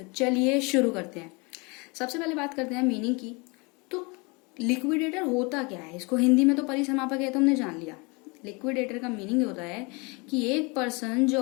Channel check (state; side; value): quieter; right; 28.8 dB